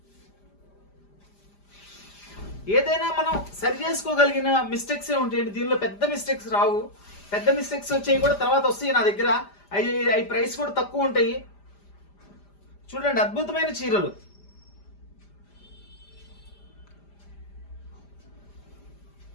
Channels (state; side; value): late; right; 5.0 ms